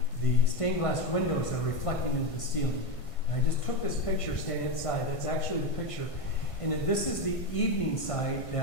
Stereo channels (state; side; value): late; right; 1.5 ms